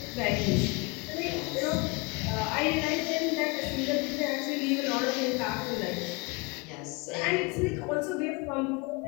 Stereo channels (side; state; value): right; quieter; 27.3 dB